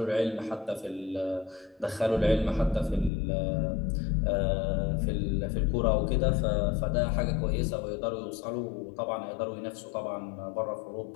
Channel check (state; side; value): drops out; right; at 3.1 s